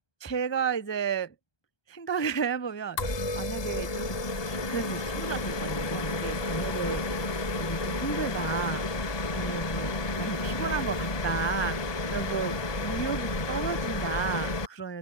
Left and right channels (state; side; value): late; right; 1.2 ms